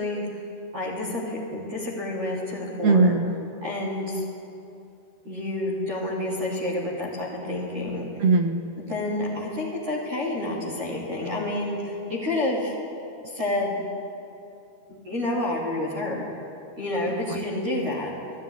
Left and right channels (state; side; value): late; left; 13 ms